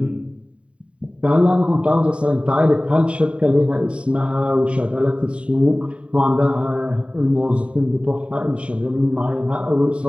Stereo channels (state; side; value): late; left; 0.060 ms